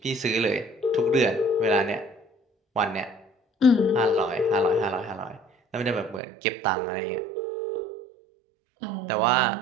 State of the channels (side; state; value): left; drops out; at 6.2 s